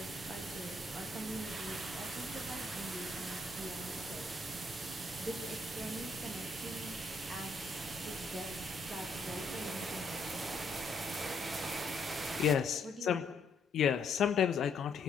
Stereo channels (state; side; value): quieter; right; 3.0 dB